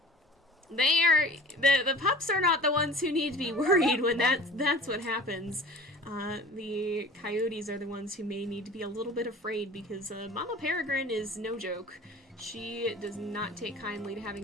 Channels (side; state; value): both; normal; correlation 0.42